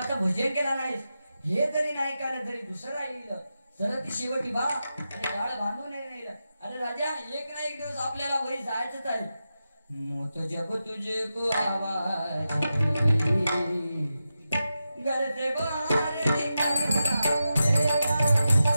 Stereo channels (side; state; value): both; inverted; correlation -0.90